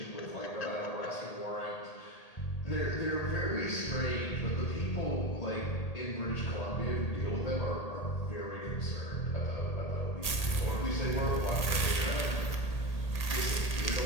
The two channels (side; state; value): right; late; 1.8 ms